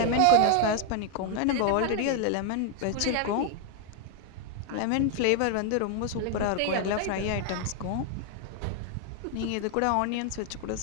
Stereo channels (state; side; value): different; both; correlation 0.00